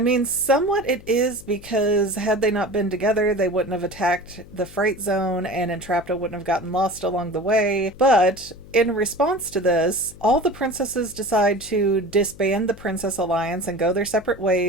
mean, somewhat it is, because had they not been together, they wouldn't have attacked the Fright Zone and Entrapta wouldn't have gotten lost along the way. But in response to this, all the princesses decide to disband the Princess Alliance and go their separate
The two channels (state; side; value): noise; left; hum, 20 dB below the sound